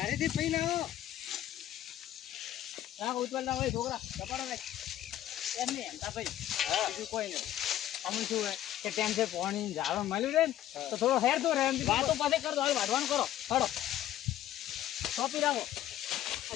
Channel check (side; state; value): right; quieter; 12.5 dB